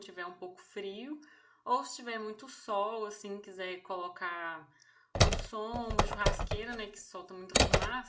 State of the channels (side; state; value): both; identical; correlation 1.00